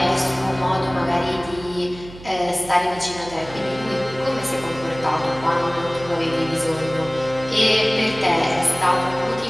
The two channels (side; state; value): right; noise; hum, 17 dB below the sound